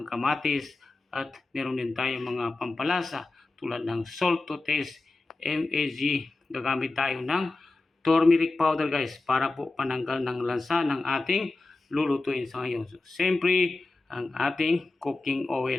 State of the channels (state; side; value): quieter; right; 3.3 dB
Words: kamatis, at meron din tayong mga pampalasa tulad ng salt to taste, MAG. Gagamit tayo ng turmeric powder guys para po pananggal ng lansa ng ating lulutuin sa ngayon. So, siyempre ang ating cooking